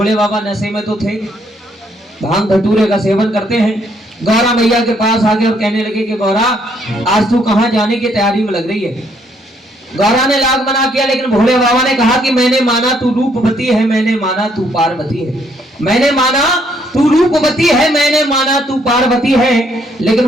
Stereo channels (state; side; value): normal; both; correlation 0.70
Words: बाबा नशे में तो थे, भांग धतूरे का सेवन करते हैं। गौरा मैया के पास आके और कहने लगे कि गौरा आज तू कहां जाने की तैयारी में लग रही है। गौरा ने लाख मना किया, लेकिन भोले बाबा ने कहा कि मैंने माना तू रूपवती है, मैंने माना तू पार्वती है, मैंने माना तू रूपवती है, मैंने माना तू पार्वती है, लेकिन